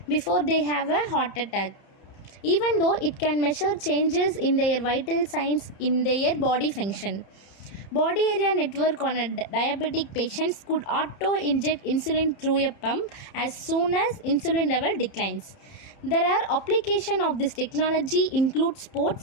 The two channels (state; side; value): late; right; 30 ms